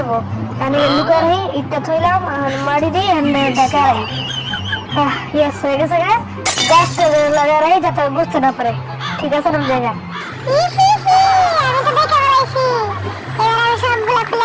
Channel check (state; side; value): identical; both; correlation 1.00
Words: আমি লুকারে ইটটা থইলাম মারি দিই দেখাই। ইয়েস হয়ে গেছে গে, গাছটা লাগা রাই যাতে বুঝতে না পারে। ঠিক আছে না জায়গা? আমি তো দেখে বেড়াইছি। এবার আমি সবগুলো